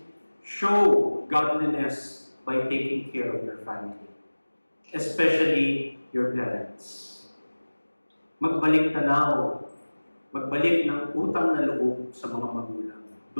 show godliness by taking care of your family, especially your parents. Magbalik tanaw, magbalik ng utang na loob sa mga magulang.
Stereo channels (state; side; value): inverted; both; correlation -1.00